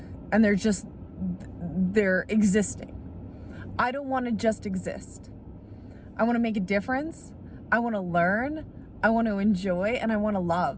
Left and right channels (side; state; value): both; identical; correlation 1.00